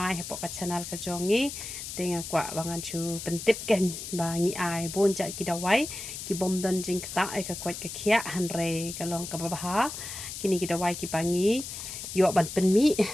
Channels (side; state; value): left; noise; hiss, 8 dB below the sound